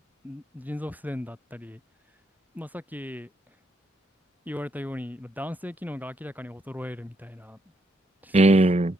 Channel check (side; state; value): both; normal; correlation 0.77